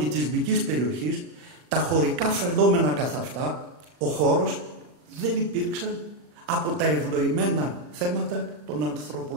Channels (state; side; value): late; left; 40 ms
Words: περιοχής, τα χωρικά φαινόμενα καθ' αυτά, ο χώρος δεν υπήρξαν από τα ευνοημένα θέματα των